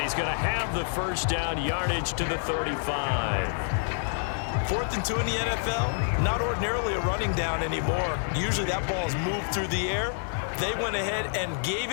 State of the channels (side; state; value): right; silent; digital silence